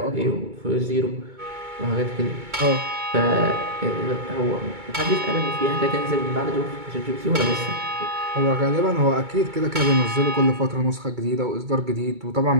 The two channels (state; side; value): late; left; 2.2 ms